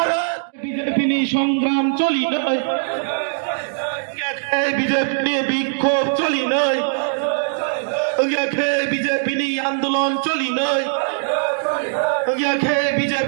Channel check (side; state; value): left; silent; digital silence